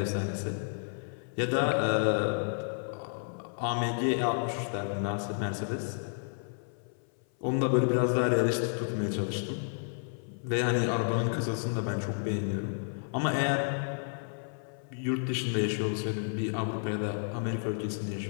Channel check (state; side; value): silent; right; 57 dB below the other